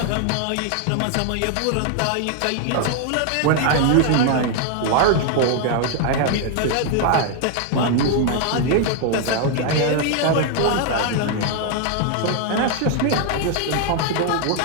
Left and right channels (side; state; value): both; different; correlation 0.00